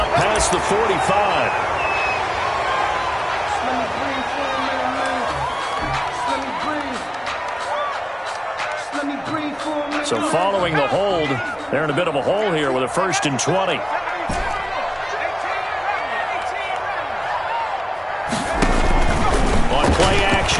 past the 45. So following the hold, they're in a bit of a hole here with a 1st and 20. On play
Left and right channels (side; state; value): both; identical; correlation 1.00